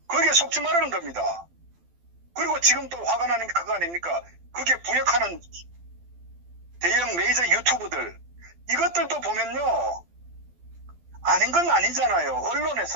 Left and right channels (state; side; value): late; left; 12 ms